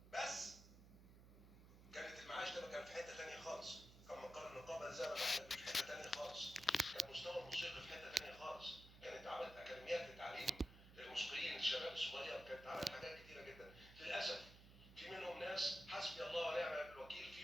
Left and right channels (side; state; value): right; noise; hum, 18 dB below the sound